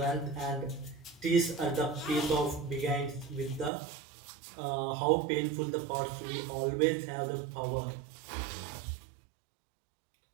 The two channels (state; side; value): drops out; left; at 3.7 s